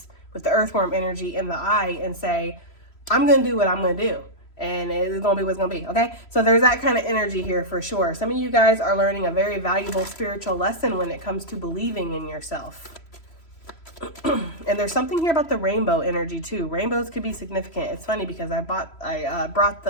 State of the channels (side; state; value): right; late; 3.0 ms